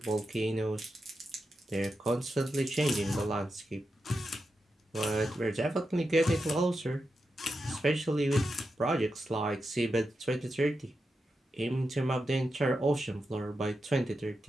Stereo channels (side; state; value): both; normal; correlation 0.88